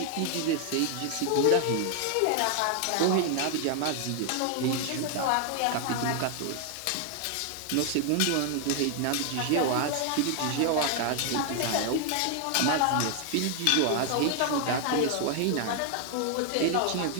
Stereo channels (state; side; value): different; both; correlation 0.00